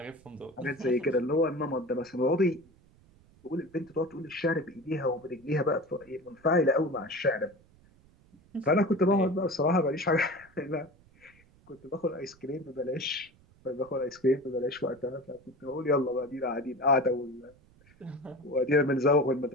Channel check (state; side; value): noise; right; rumble, 28 dB below the sound